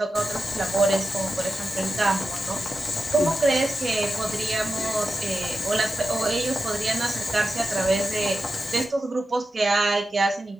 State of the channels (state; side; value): normal; both; correlation 0.89